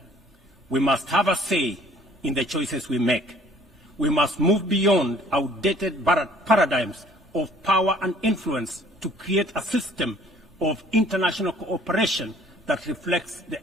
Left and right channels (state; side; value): normal; both; correlation 0.56